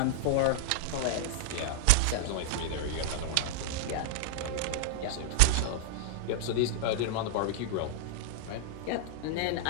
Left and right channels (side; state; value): both; different; correlation -0.01